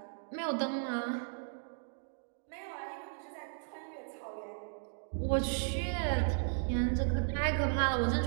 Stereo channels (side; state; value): left; silent; digital silence